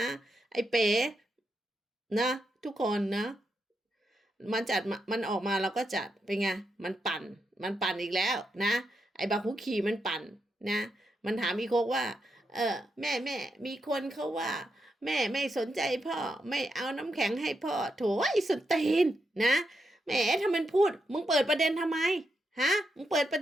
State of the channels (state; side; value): normal; both; correlation 0.84